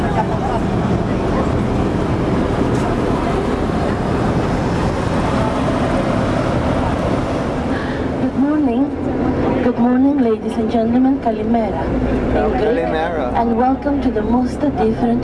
Good morning, ladies and gentlemen. Kalimera. Kalimera. And welcome to the most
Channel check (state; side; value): identical; both; correlation 1.00